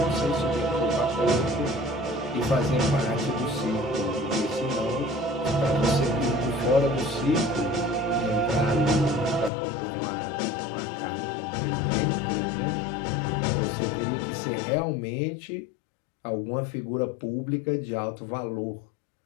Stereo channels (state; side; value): drops out; right; at 9.5 s